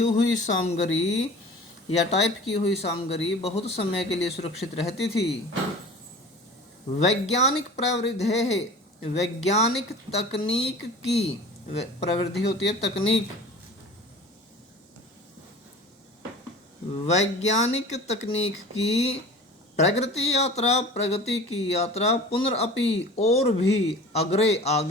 सामग्री या टाइप की हुई सामग्री बहुत समय के लिए सुरक्षित रहती थी। वैज्ञानिक तकनीक की प्रवृत्ति होती है, वैज्ञानिक तकनीक की प्रगति यात्रा, प्रगति की यात्रा, पुनरअपि और भी अग्रे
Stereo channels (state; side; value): normal; both; correlation 0.41